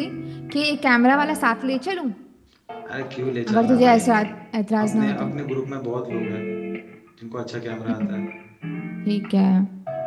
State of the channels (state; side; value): identical; both; correlation 1.00